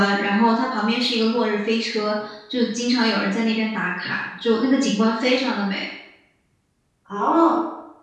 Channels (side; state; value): both; identical; correlation 1.00